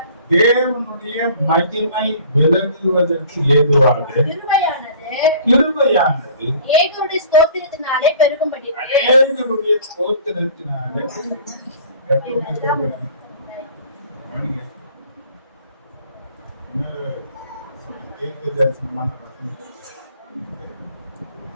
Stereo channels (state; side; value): inverted; both; correlation -0.49